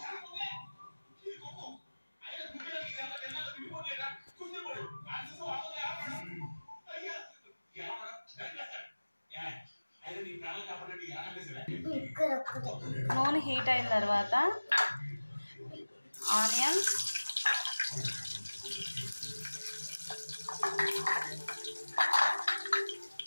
నూనె హీట్ అయిన తర్వాత ఆనియన్,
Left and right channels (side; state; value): both; inverted; correlation -1.00